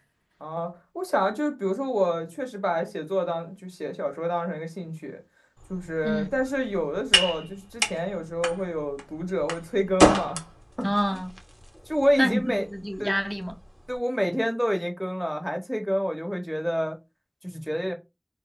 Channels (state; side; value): identical; both; correlation 1.00